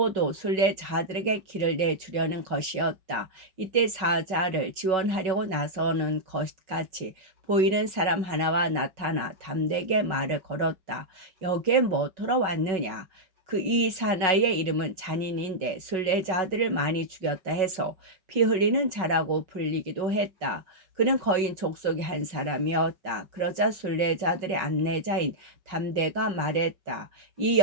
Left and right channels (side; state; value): left; late; 5.4 ms